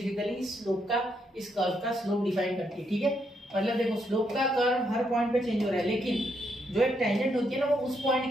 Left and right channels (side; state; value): both; normal; correlation 0.77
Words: इस स्लोप का, इस कर्व का स्लोप डिफाइन करती है, ठीक है। मतलब देखो स्लोप का कर्व हर पॉइंट पे चेंज हो रहा है, लेकिन जो एक टेंजेंट होती है ना, वो उस